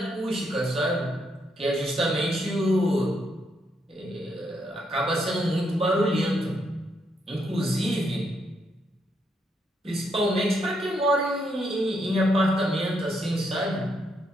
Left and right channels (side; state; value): both; normal; correlation 0.77